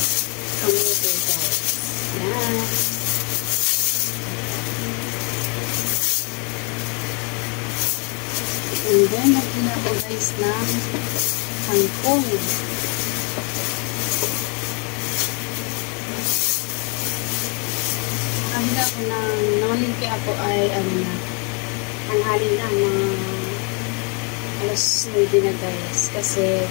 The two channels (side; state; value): right; quieter; 35.6 dB